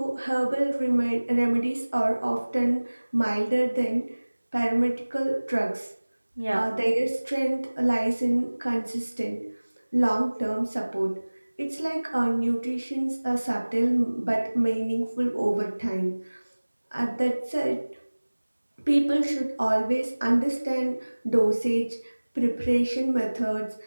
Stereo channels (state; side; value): inverted; both; correlation -1.00